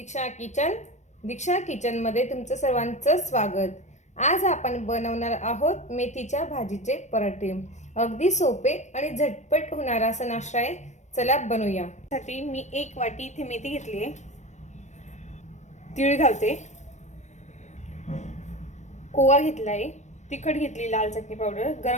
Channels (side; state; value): right; late; 0.34 ms